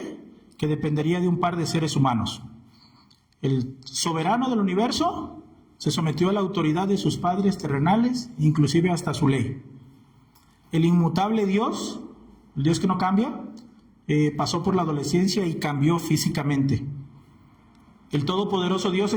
que dependería de un par de seres humanos. El soberano del universo se sometió a la autoridad de sus padres terrenales, inclusive hasta su ley. El inmutable Dios, el Dios que no cambia, pasó por la adolescencia y cambió físicamente. El todopoderoso Dios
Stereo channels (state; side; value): identical; both; correlation 1.00